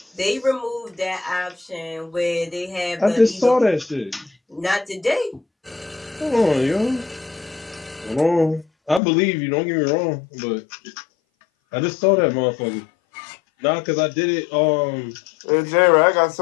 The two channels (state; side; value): drops out; right; at 9.0 s